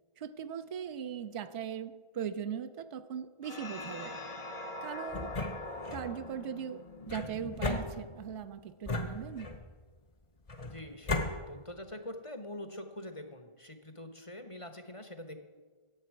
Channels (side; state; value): right; late; 1.7 ms